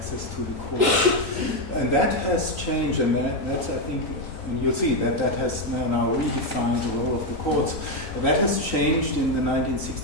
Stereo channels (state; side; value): late; right; 3.9 ms